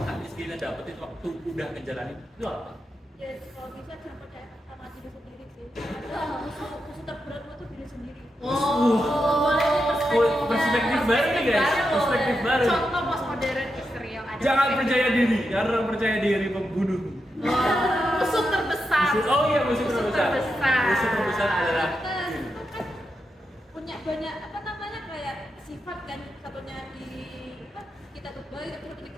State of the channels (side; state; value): both; normal; correlation 0.86